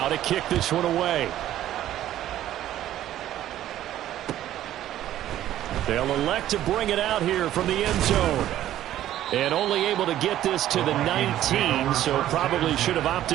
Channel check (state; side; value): quieter; left; 12.7 dB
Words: to kick this one away. They'll elect to bring it out here from the end zone. And only able to get this to the 19, so probably should have